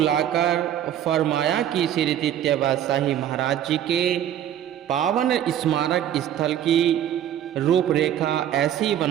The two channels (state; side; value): quieter; left; 10.7 dB